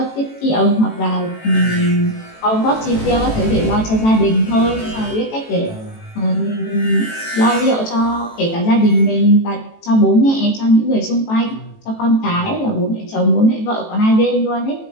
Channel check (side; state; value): right; late; 18 ms